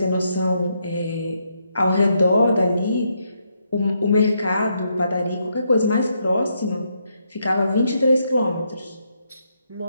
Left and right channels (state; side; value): inverted; both; correlation -0.78